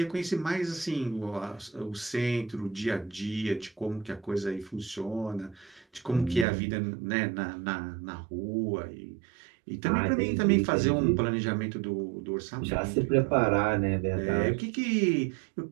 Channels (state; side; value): drops out; left; at 6.5 s